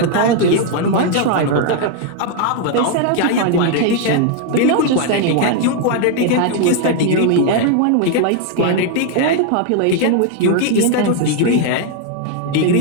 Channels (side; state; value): both; different; correlation 0.00